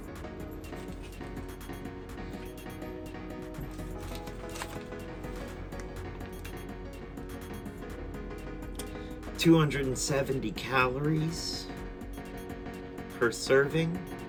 $270 calories per serving.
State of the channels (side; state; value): both; identical; correlation 1.00